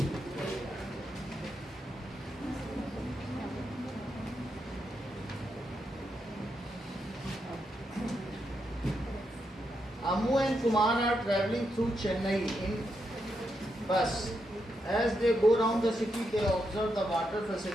Amu and Kumar are traveling through Chennai in bus. As they go around the city, they observe the water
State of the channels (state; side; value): normal; both; correlation 0.82